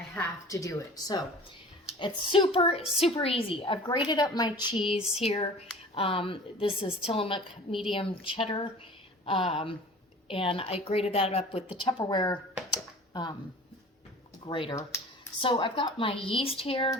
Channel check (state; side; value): normal; both; correlation 0.42